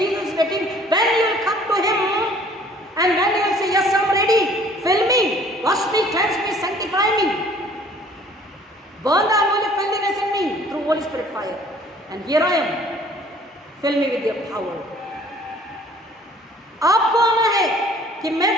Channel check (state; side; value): normal; both; correlation 0.55